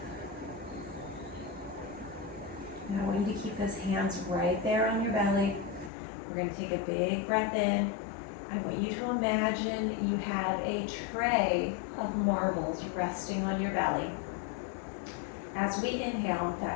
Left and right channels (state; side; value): drops out; right; at 5.9 s